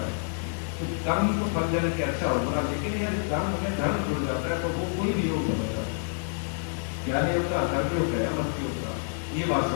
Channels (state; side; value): silent; right; 59 dB below the other